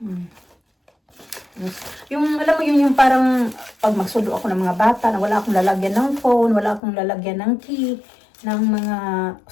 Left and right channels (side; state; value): right; drops out; at 6.8 s